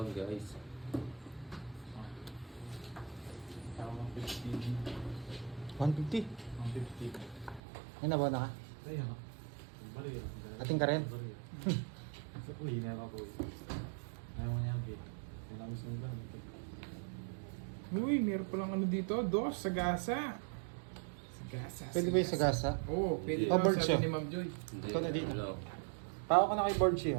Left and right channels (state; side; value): drops out; left; at 7.6 s